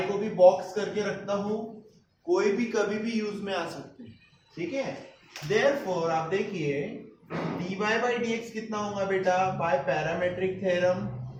को भी बॉक्स करके रखता हूं, कोई भी कभी भी यूज में आ सकते हैं, ठीक है? देयरफॉर आप देखिए dy बाई dx कितना होगा बेटा, by parametric theorem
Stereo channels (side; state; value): both; identical; correlation 1.00